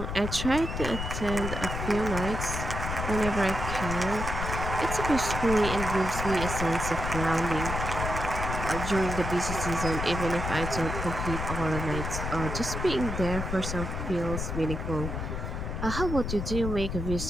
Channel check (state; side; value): noise; left; rumble, 4 dB below the sound